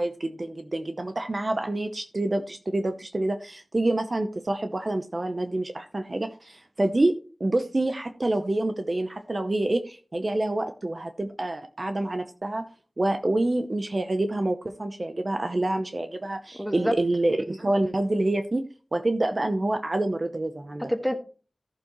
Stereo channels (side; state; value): both; normal; correlation 0.98